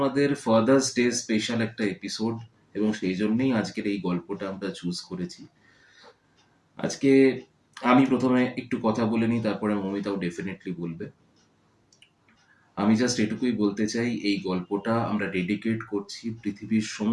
ফাদার্স ডে স্পেশাল একটা এপিসোড এবং সেই জন্যই আজকের এই গল্পটা আমরা চুজ করেছি। আজকে আমি প্রথমে একটু কথা বলে নিই, তারপরে মমিতাও ডেফিনেটলি বলবে। আমি জাস্ট এটুকুই বলতে চাই, এই গল্পটা আমরা ডেডিকেট করছি পৃথিবীর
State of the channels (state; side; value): identical; both; correlation 1.00